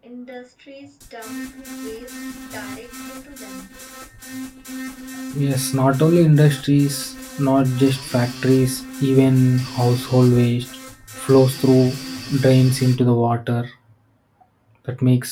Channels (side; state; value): both; identical; correlation 1.00